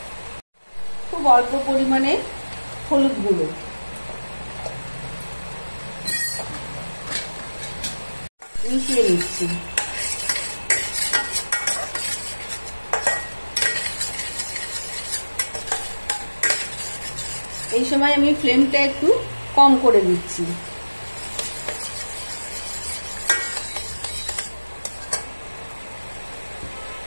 খুব অল্প পরিমাণে হলুদ গুঁড়ো, মিশিয়ে নিচ্ছি। এই সময় আমি ফ্লেমটা একটু কম করে দিচ্ছি।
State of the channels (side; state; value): both; inverted; correlation -1.00